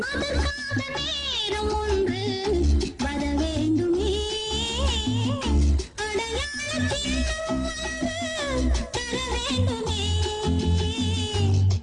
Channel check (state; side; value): identical; both; correlation 1.00